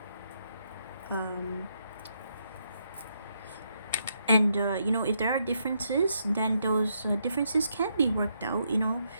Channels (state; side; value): inverted; both; correlation -0.78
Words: And you know, if there are differences, then those differences can be worked out. You know,